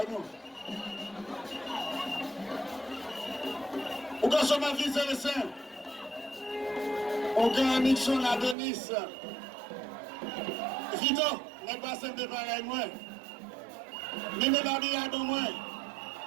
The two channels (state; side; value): drops out; left; at 8.6 s